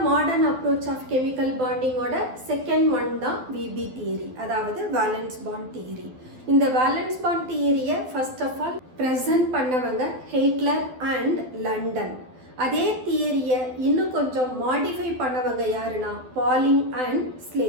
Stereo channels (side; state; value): left; late; 12 ms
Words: மாடர்ன் அப்ரோச் ஆஃப் கெமிக்கல் பாண்டிங்கோட செகண்ட் ஒன் தான் VB தியரி, அதாவது வேலன்ஸ் பாண்ட் தியரி. இந்த வேலன்ஸ் பாண்ட் தியரியை ஃபர்ஸ்ட் ஆஃப் ஆல் ப்ரெசன்ட் பண்ணவங்க ஹெய்ட்லர் அண்ட் லண்டன். அதே தியரியை இன்னும் கொஞ்சம் மாடிஃபை பண்ணவங்க யாருன்னா Pauling and